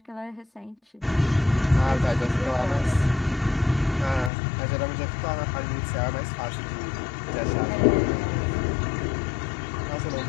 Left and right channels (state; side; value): drops out; right; at 4.3 s